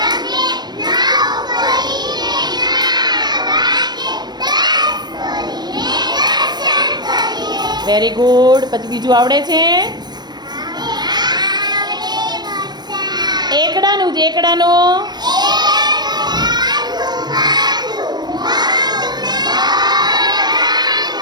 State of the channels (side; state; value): left; late; 0.20 ms